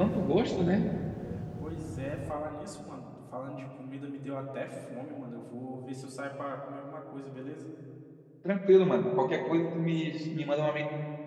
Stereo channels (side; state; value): both; identical; correlation 1.00